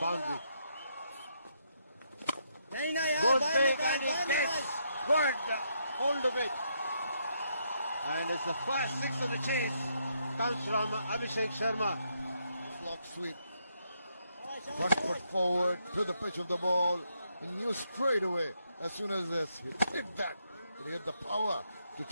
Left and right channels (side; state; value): both; inverted; correlation -0.77